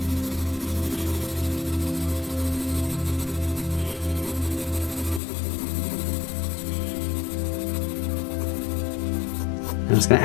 I'm just going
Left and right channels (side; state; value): right; drops out; at 5.2 s